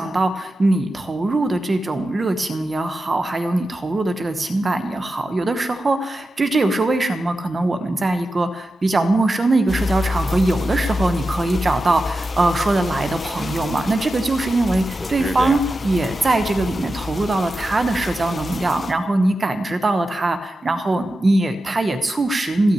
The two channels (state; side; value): normal; both; correlation 0.91